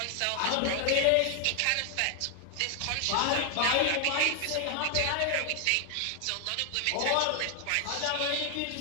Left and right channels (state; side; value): different; both; correlation 0.00